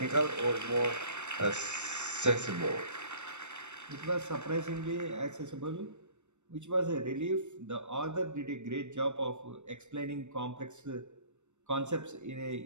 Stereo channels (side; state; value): left; late; 0.84 ms